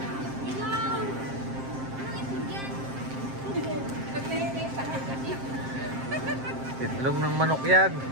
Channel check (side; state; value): left; late; 7.6 ms